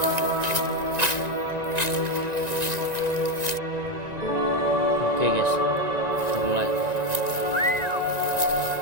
Oke guys, kita mulai.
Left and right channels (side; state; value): left; late; 1.9 ms